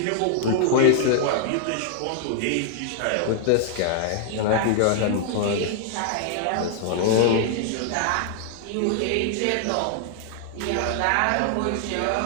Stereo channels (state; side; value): different; both; correlation 0.00